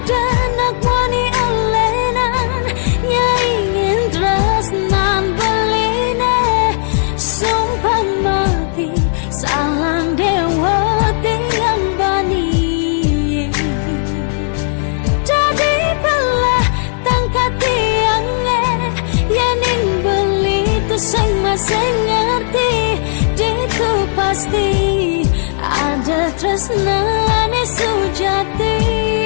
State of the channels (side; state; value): right; silent; 70 dB below the other